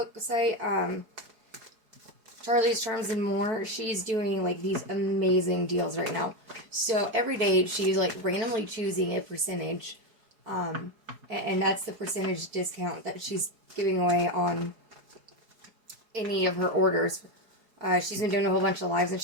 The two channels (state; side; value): late; left; 4.5 ms